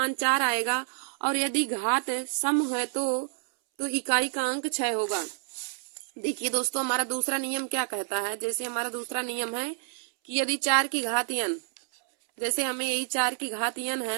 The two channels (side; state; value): left; silent; 59 dB below the other